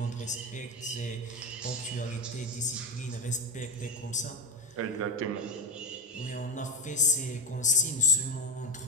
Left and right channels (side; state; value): both; normal; correlation 0.10